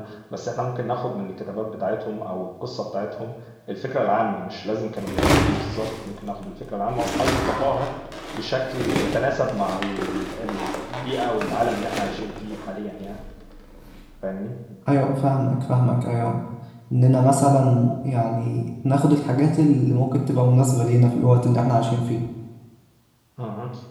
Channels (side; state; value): both; identical; correlation 1.00